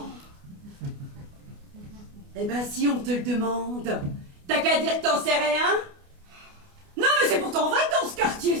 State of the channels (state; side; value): late; left; 29 ms